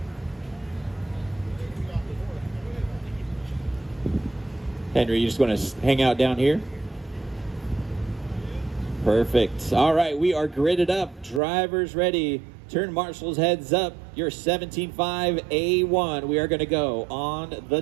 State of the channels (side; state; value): left; drops out; at 11.4 s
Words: Henry, you just want to hang out down here? Perfect. All right, we are gridded up. Drivers ready. Turn marshals heads up. Your 17.5 A1. We are going to go on the